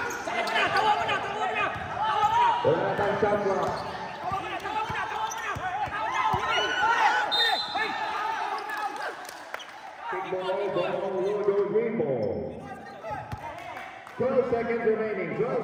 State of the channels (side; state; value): both; identical; correlation 1.00